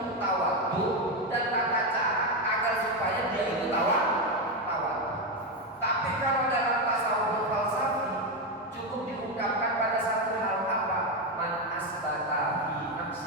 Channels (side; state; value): both; normal; correlation 0.09